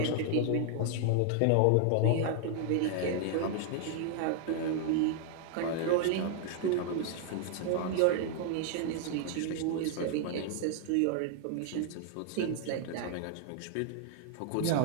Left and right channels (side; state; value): both; different; correlation 0.00